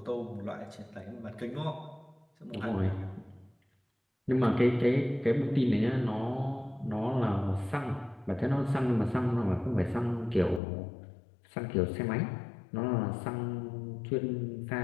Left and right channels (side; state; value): right; drops out; at 10.6 s